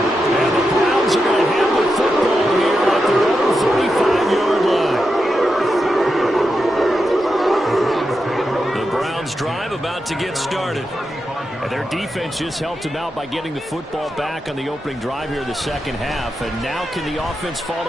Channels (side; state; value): both; normal; correlation 0.87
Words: the Browns are going to have the football here at their own 35-yard line. The Browns drive about to get started. And their defense just helped them out by getting the football back on the opening drive here in the second half. And now can the offense